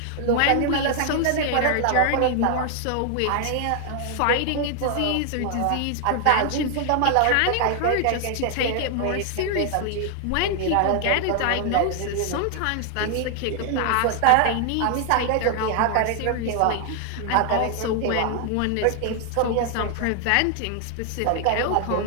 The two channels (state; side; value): different; both; correlation 0.00